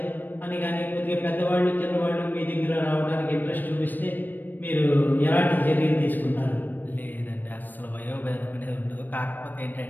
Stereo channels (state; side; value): late; right; 0.090 ms